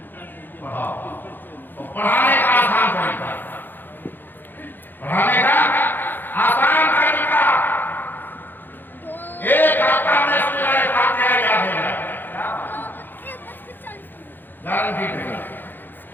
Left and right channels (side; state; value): right; late; 0.092 ms